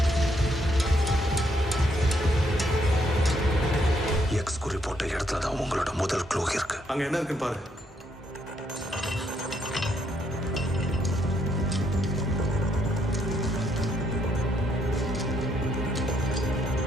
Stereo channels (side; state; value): both; normal; correlation 0.73